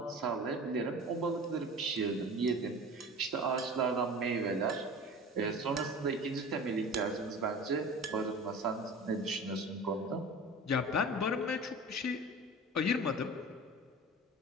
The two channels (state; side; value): normal; both; correlation 0.36